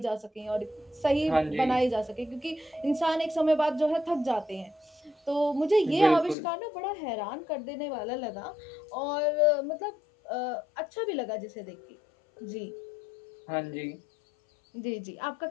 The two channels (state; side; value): drops out; right; at 6.4 s